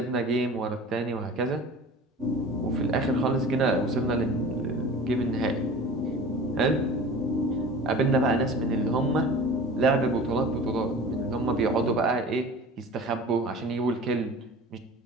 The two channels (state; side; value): normal; both; correlation 0.39